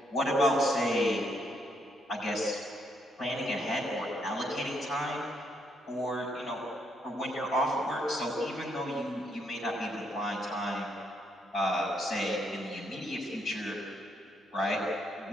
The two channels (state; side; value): normal; both; correlation 0.75